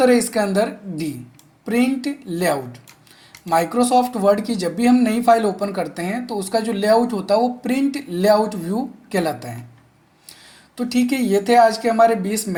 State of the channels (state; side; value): identical; both; correlation 1.00